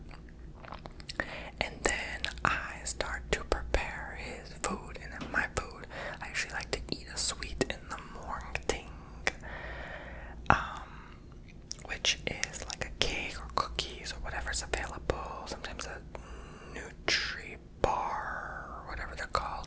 And then I start to prepare his food. And then my food, I usually like to eat a sweet in the morning, which is like a cake or cookies or whatever's available. Sometimes a Nutri bar or whatever they're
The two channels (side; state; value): both; identical; correlation 1.00